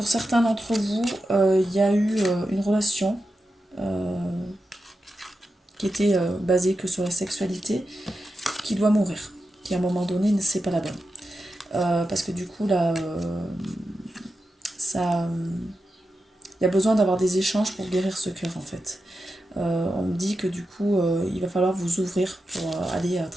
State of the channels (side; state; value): both; normal; correlation 0.89